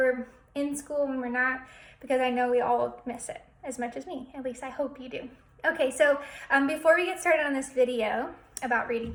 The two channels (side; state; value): both; identical; correlation 1.00